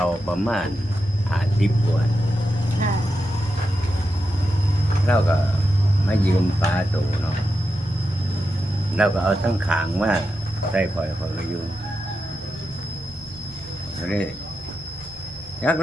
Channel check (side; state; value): both; normal; correlation 0.88